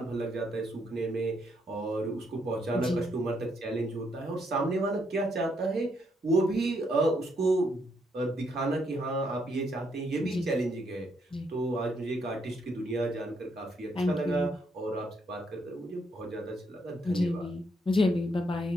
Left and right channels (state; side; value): normal; both; correlation 0.75